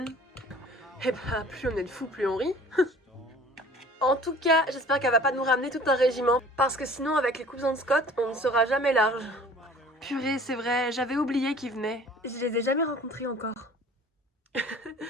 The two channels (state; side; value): normal; both; correlation 0.48